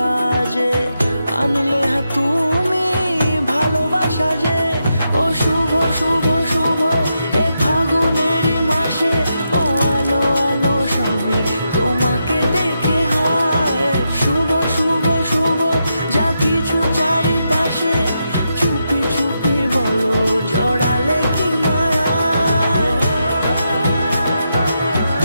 আজে, আনলে হ্যাঁ তুমি ভালোবাসা যে। ও শুভ শুভ শুভ এ ফাগুনেরই মাসে, ও আলো আলো সবই তোমাকে দেখে হায়। শুভ শুভ শুভ যা কিছু চারিপাশে, চুপি চুপি বলো জড়ালে কি মায়া।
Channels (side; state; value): both; inverted; correlation -0.84